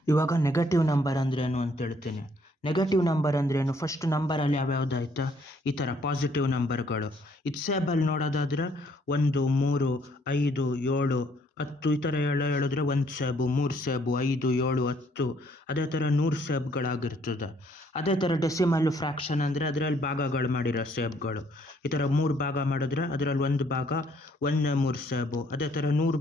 ಇವಾಗ negative number ಅಂದ್ರೇನು ಅಂತ ಹೇಳ್ತೀನಿ. ನೆಗೆಟಿವ್ ನಂಬರ್ ಅಂದ್ರೇನು, ಫಸ್ಟ್ ನಂಬರಲ್ಲಿ ಯಾವ್ಯಾವ್ದು ಆಯ್ತಾ, ಈ ಥರ ಪಾಸಿಟಿವ್ ನಂಬರ್ಗಳು. ಇದು ಸೇಬಲ್ಲಿ ನೋಡೋದಾದ್ರೆ 1, 3, 5, 7, 10 ಈ ಥರ ಹೇಳಿದ್ರೆ 1 ಸೇಬು, 3 ಸೇಬು, 5, 7, 10 ಅದೇ ಥರ 100 ಸೇಬ್ಗಳಾಗಿರ್ತದೆ. ಅದೇ ಥರ ಡೆಸಿಮಲ್ಲು ಫ್ರ್ಯಾಕ್ಷನ್ ಅಂದರೆ ಅದರಲ್ಲಿ ಭಾಗಗಳು ಮಾಡಿರೋ ಸೇಬ್ಗಳು. ಈ ಥರ 3 ಭಾಗ ಮಾಡಿದ್ರೆ ಅದರಲ್ಲಿ 1 ಭಾಗ 1/3 ಸೇಬು. ಅದೇ ಥರ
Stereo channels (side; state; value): both; normal; correlation 0.65